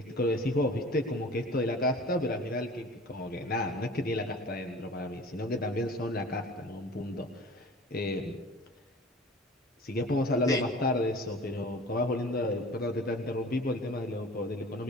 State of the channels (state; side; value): normal; both; correlation 0.43